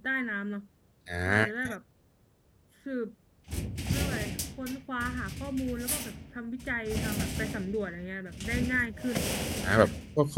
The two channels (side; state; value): both; identical; correlation 1.00